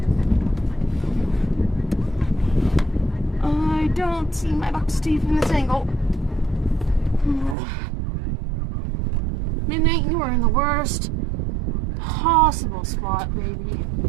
I don't see my box teeth in this angle. Midnight, you are in the worst possible spot, baby.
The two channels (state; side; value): drops out; left; at 7.6 s